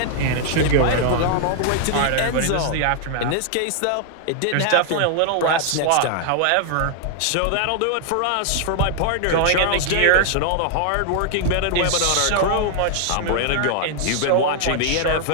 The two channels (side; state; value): both; different; correlation 0.00